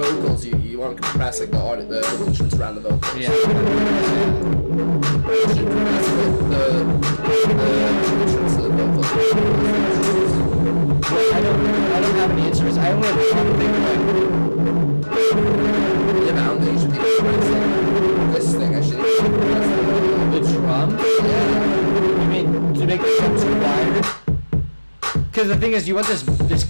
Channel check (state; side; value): inverted; both; correlation -1.00